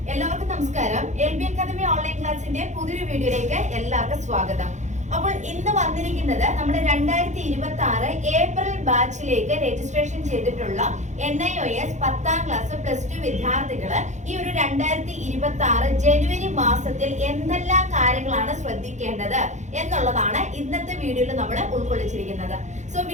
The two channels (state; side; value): late; left; 0.34 ms